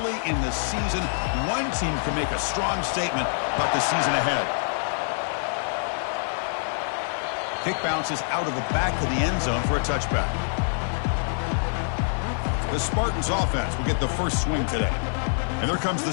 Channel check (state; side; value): silent; right; 61 dB below the other